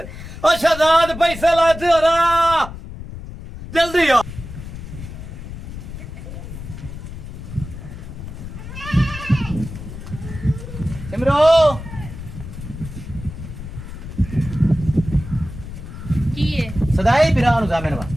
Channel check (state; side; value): noise; left; rumble, 11 dB below the sound